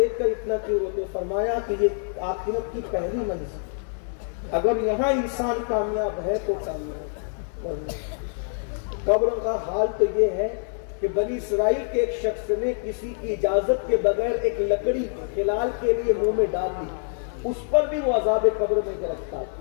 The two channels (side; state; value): right; silent; 61 dB below the other